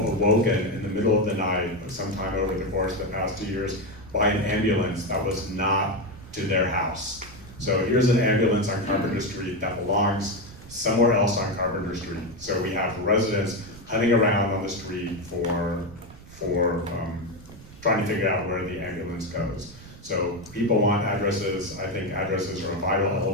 in the middle of the night, sometime over the course of the past 2 years, by an ambulance that was not to their house. So here's an ambulance on Carpenter Street that belongs somewhere else on Carpenter Street. So we have residents hunting around on the street for trying to figure out where the ambulance goes. So people want addresses. I think addresses are a vital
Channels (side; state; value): right; noise; rumble, 19 dB below the sound